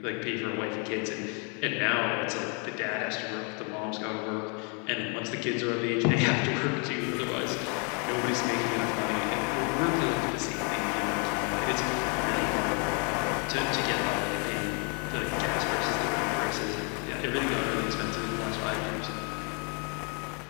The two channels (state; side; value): quieter; right; 36.4 dB